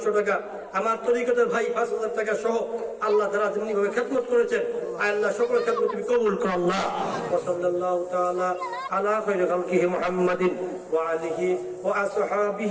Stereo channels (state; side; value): identical; both; correlation 1.00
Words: টাকা, আমার তরিকতের ভাই 5000 টাকা সহ আল্লাহ যারা যেমনি ভাবে খেদমত করেছেন আল্লাহ সকলের খেদমত তুমি কবুল করো আল্লাহ। সাল্লাল্লাহু তাআলা আলা খায়রি খালকিহি মুহাম্মাদিন ওয়া আলিহি ওয়া